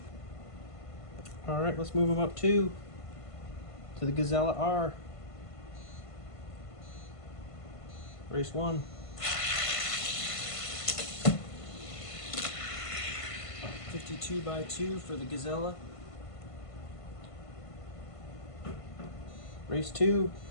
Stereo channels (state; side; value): late; right; 1.5 ms